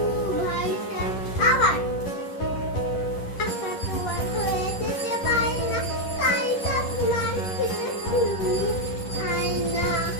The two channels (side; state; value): right; late; 10 ms